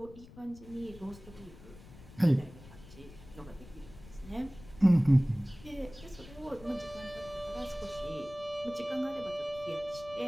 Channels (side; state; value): left; noise; rumble, 18 dB below the sound